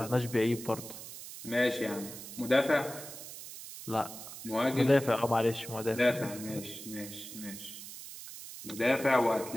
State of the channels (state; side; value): noise; right; hiss, 12 dB below the sound